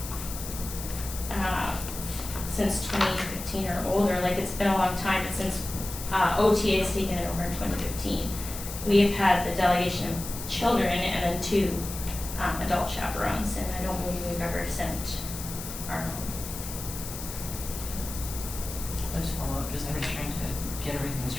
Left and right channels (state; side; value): noise; left; hiss, 9 dB below the sound